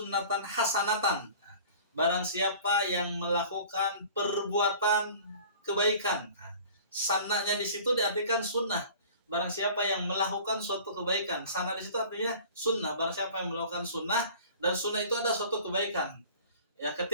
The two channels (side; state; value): both; inverted; correlation -0.45